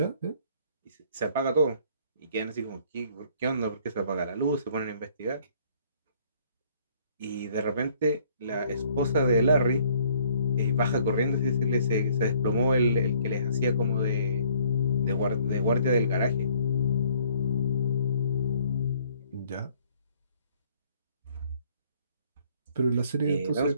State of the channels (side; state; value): both; inverted; correlation -0.61